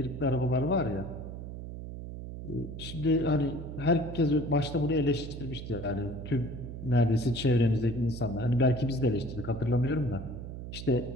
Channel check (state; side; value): noise; right; hum, 9 dB below the sound